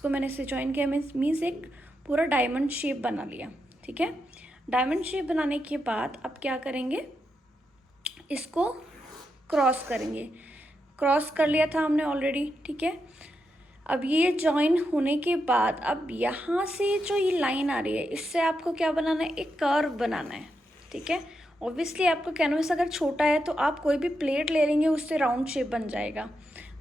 मैंने इससे ज्वाइन किया, मीन्स एक पूरा डायमंड शेप बना लिया, ठीक है। डायमंड शेप बनाने के बाद अब क्या करेंगे, इसको क्रॉस करेंगे। क्रॉस कर लिया था हमने ऑलरेडी, ठीक है। अब ये ज्वाइन होने के बाद अब यहाँ से जो ये लाइन आ रही है, इससे आपको क्या बनाना है, एक कर्व बनाना है, ठीक है। ऑब्वियसली आपका कैनवस अगर छोटा है तो आप कोई भी प्लेट ले लेंगे, उससे राउंड शेप बन जाएगा,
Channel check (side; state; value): both; normal; correlation 0.85